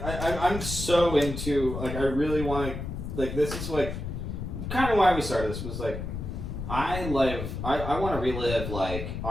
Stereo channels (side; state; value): left; noise; rumble, 6 dB below the sound